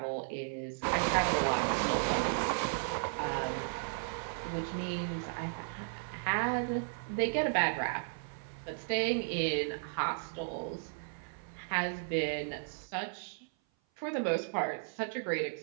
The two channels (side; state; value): left; silent; 55 dB below the other